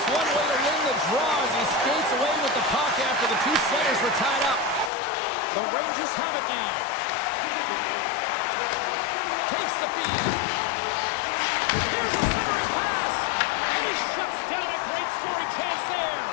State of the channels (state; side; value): drops out; right; at 4.9 s